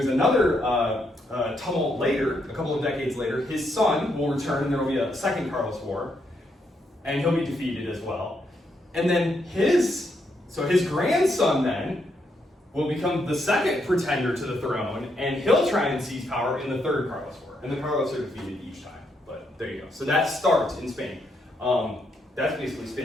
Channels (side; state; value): both; normal; correlation 0.78